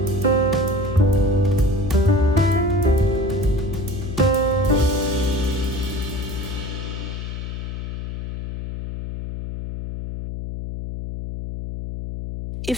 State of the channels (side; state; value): left; noise; hum, 6 dB below the sound